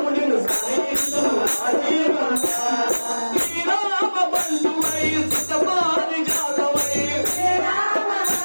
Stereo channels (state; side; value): inverted; both; correlation -1.00